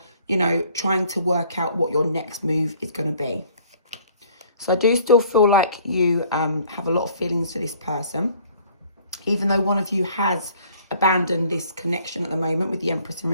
you know, trying to work out what your next move is going to be. So I do still feel like you have a lot of feelings for this person, even though one of you has abandoned this connection at the moment with the Empress in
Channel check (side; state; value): both; inverted; correlation -0.57